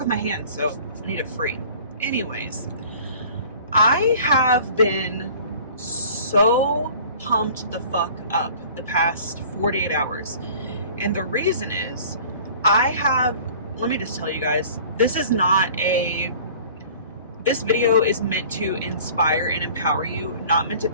my hands, so I need it free. Anyways, I have been so pumped the fuck up the past 48 hours, and the reason is let me just tell you guys, this video is meant to inspire and empower you, not meant to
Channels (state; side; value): inverted; both; correlation -0.48